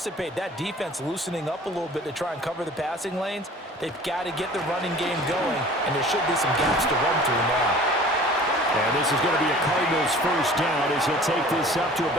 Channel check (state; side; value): normal; both; correlation 0.46